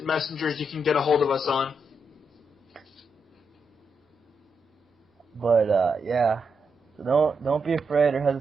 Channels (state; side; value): normal; both; correlation 0.82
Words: messengers you can get a hold of us on. But yeah, so don't be afraid or